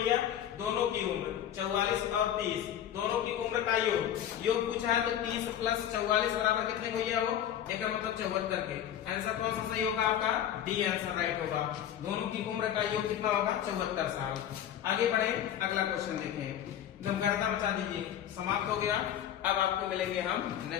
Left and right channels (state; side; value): quieter; right; 10.5 dB